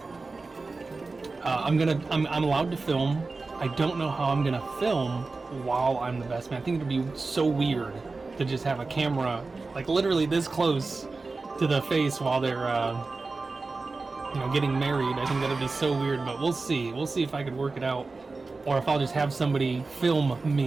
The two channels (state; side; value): quieter; left; 3.8 dB